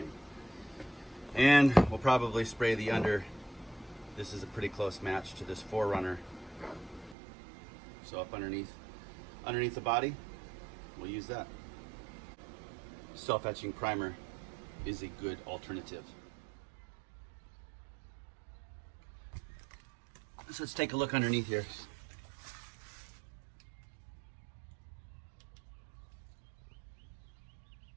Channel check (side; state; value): left; drops out; at 7.2 s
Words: And we'll probably spray the under. This is a pretty close match to this 4Runner. So up underneath the body, we'll use that. Self-etching primer is a good alternative. So let's take a look underneath here.